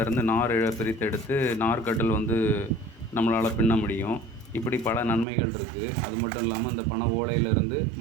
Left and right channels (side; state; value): left; drops out; at 5.2 s